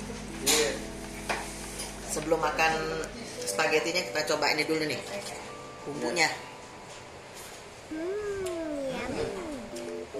Sebelum makan spagettinya kita coba ini dulu nih, bumbunya.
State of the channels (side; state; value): both; identical; correlation 1.00